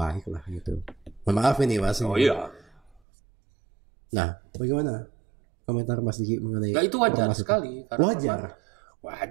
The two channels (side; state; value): left; drops out; at 3.0 s